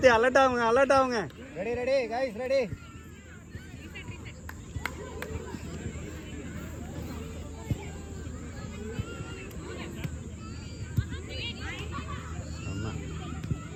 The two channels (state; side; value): identical; both; correlation 1.00